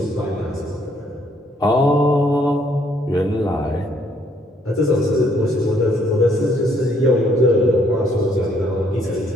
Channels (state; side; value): normal; both; correlation 0.67